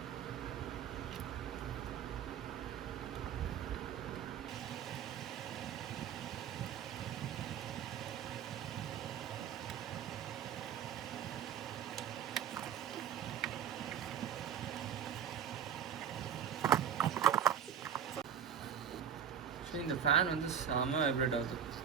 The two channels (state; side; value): quieter; left; 8.4 dB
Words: இந்த ஃபேன் வந்து செம வைப்ரேட் ஆகுது,